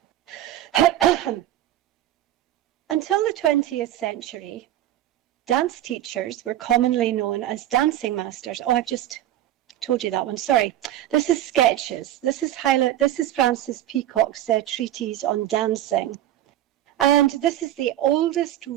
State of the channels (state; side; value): quieter; left; 13.0 dB